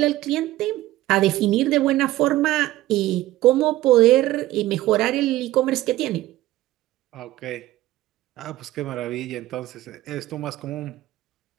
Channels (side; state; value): left; quieter; 15.9 dB